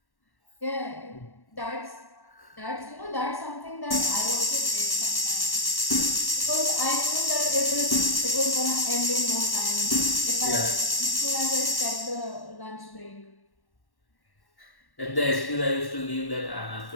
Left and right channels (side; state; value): right; late; 1.1 ms